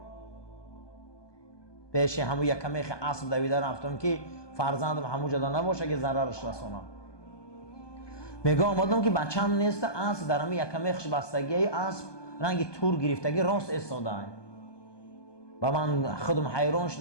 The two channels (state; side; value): late; right; 1.2 ms